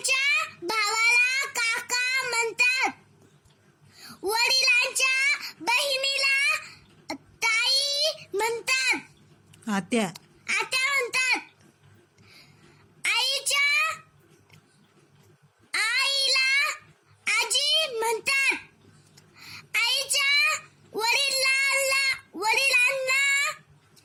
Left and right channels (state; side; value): identical; both; correlation 1.00